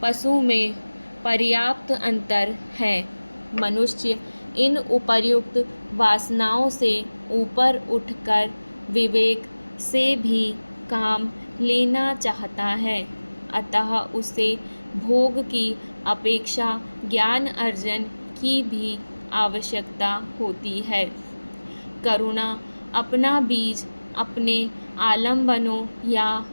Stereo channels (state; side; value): inverted; both; correlation -1.00